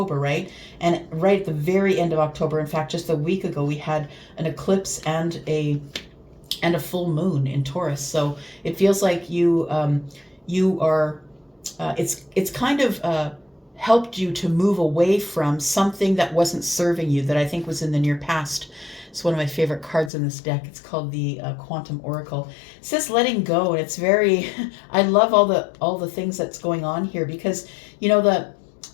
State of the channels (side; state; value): right; drops out; at 20.1 s